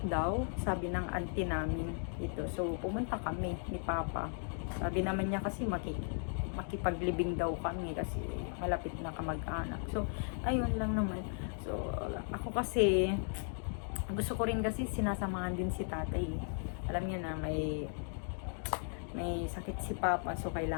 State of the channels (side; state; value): right; silent; 53 dB below the other